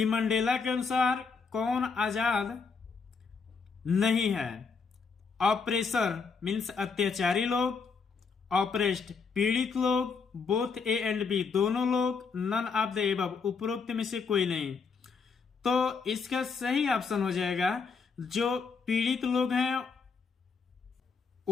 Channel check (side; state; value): right; quieter; 5.2 dB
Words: मंडेला के अनुसार कौन आजाद नहीं है। ऑपरेसर मीन्स अत्याचारी लोग, ऑपरेस्ड पीड़ित लोग, बोथ ए एंड बी दोनों लोग, नन ऑफ द एबव उपरोक्त में से कोई नहीं। तो इसका सही ऑप्शन हो जाएगा जो पीड़ित लोग हैं